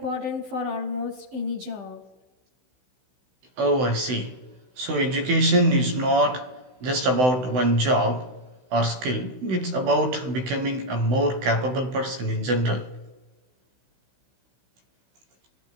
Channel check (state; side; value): late; left; 16 ms